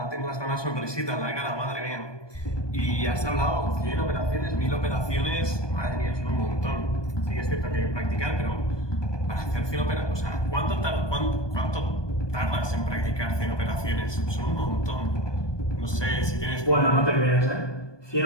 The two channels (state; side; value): late; right; 1.2 ms